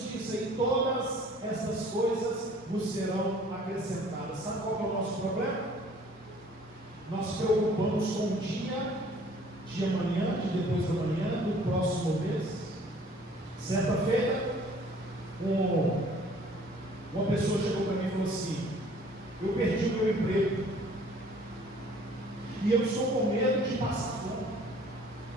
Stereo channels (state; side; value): normal; both; correlation 0.54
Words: e todas essas coisas vos serão acrescentadas. Sabe qual é o nosso problema? Nós preocupamos com o dia de amanhã, de depois da manhã, do próximo mês. Certa feita, uma pessoa chegou para mim e falou assim: eu perdi o meu emprego e eu estou com medo de passar fome.